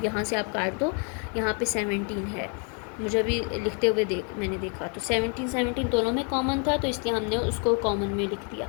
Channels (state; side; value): quieter; right; 39.2 dB